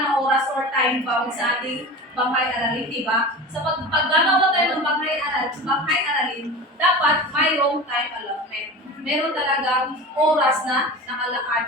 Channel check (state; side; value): normal; both; correlation 0.32